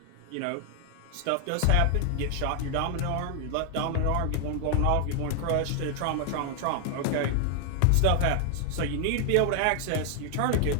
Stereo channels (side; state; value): both; different; correlation 0.00